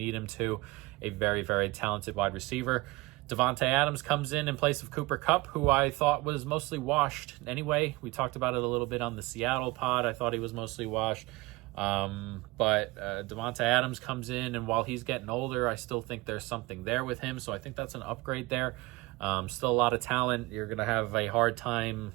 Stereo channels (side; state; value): left; quieter; 21.9 dB